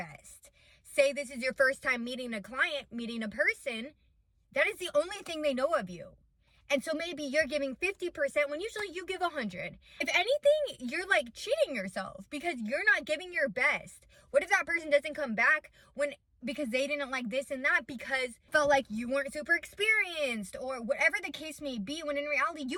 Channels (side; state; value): both; identical; correlation 1.00